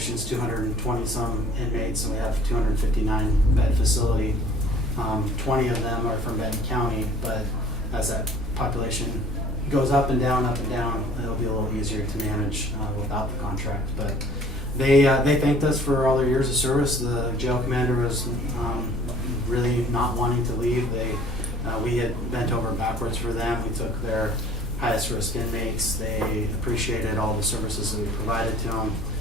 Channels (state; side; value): normal; both; correlation 0.52